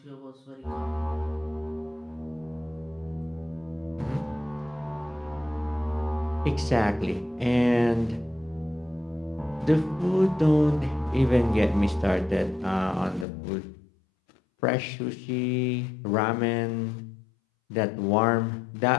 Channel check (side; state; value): right; drops out; at 13.2 s